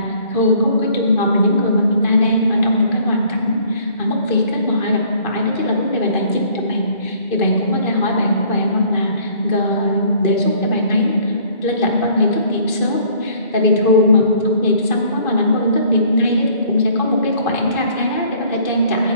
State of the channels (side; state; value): right; late; 2.4 ms